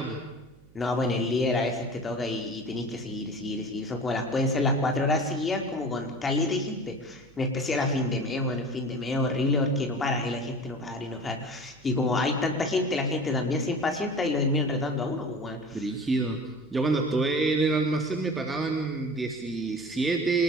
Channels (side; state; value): right; noise; hum, 26 dB below the sound